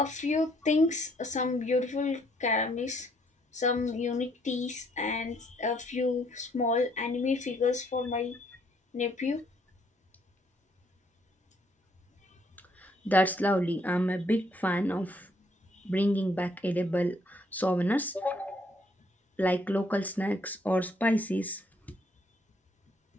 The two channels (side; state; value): both; normal; correlation 0.68